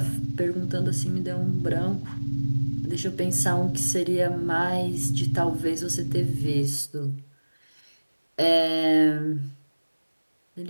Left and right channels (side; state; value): both; inverted; correlation -1.00